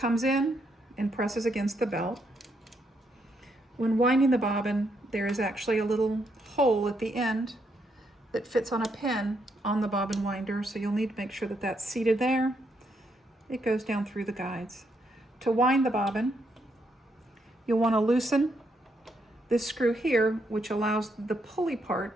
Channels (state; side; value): normal; both; correlation 0.77